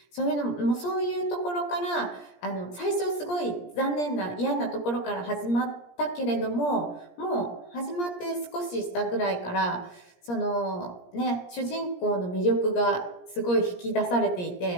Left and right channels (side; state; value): right; late; 17 ms